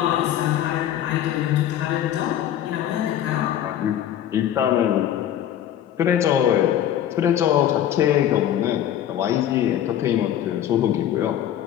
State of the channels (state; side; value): quieter; right; 11.0 dB